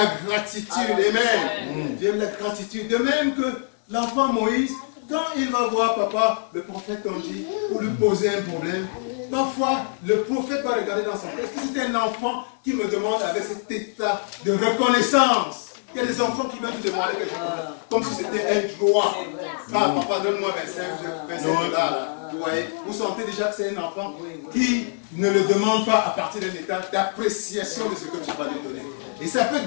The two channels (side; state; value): right; silent; 62 dB below the other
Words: gratitude. Amen. Dieu aime la gratitude. De même que l'enfant Moïse, quand il va voir papa, le prophète, on dit, pour lui poser un problème, parfois le prophète va regarder dans son cœur. Est-ce que c'est un enfant qui me demande avec cet état de reconnaissance? Il y a des enfants qui viennent te demander quelque chose, comme si c'était un droit. Ah, papa, donne-moi 25 dollars. Vous voyez, vous sentez déjà que c'est un enfant qui ne le demande pas à partir d'un état d'appréciation de ce que tu vas lui donner. Et ça peut